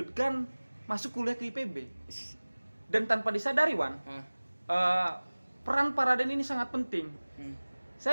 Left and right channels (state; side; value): inverted; both; correlation -1.00